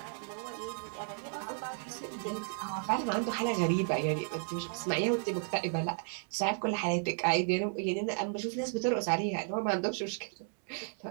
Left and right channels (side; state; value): left; silent; 55 dB below the other